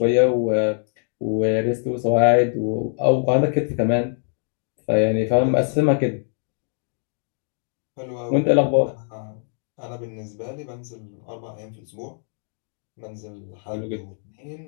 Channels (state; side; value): silent; right; 60 dB below the other